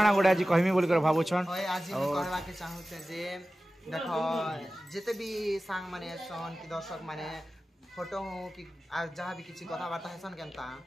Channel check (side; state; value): both; normal; correlation 0.95